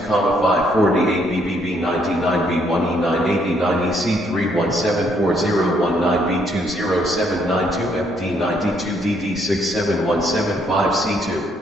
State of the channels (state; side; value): normal; both; correlation 0.70